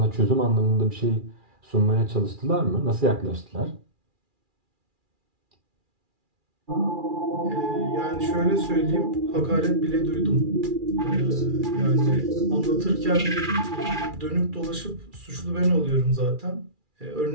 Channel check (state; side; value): late; left; 2.4 ms